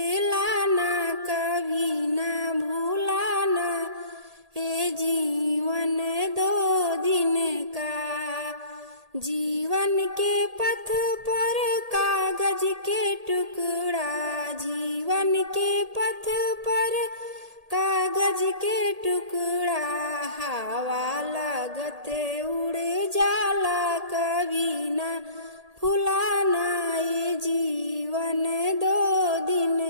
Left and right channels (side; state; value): left; late; 1.8 ms